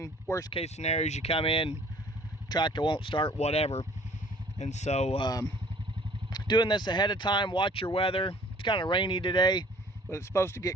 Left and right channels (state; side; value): normal; both; correlation 0.53